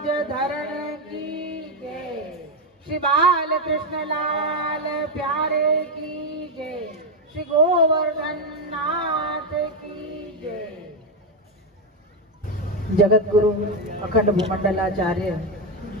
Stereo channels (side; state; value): both; normal; correlation 0.06